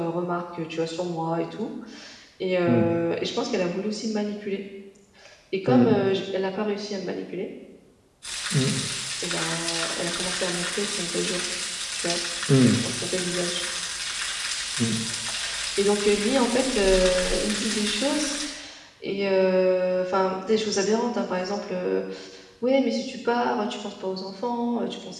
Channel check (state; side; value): identical; both; correlation 1.00